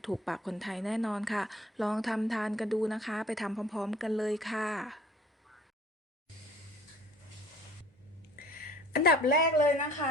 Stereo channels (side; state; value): both; normal; correlation 0.52